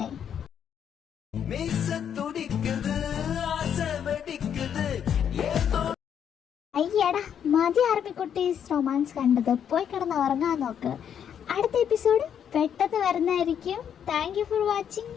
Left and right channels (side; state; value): right; quieter; 8.6 dB